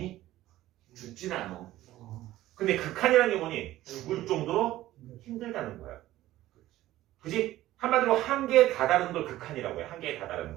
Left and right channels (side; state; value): left; quieter; 15.2 dB